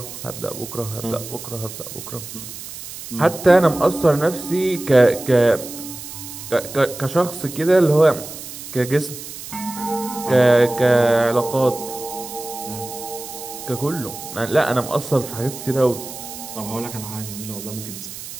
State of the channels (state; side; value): noise; right; hiss, 11 dB below the sound